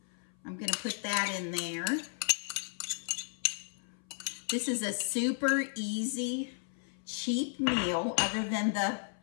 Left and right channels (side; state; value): right; silent; 55 dB below the other